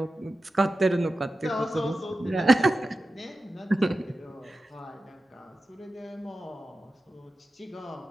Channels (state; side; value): normal; both; correlation 0.93